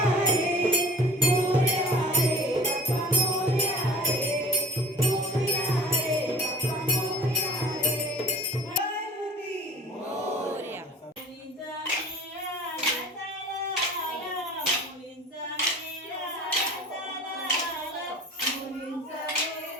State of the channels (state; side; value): normal; both; correlation 0.43